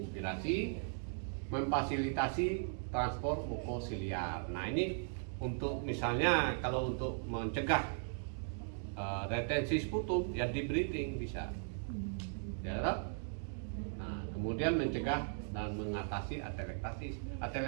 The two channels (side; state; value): left; silent; digital silence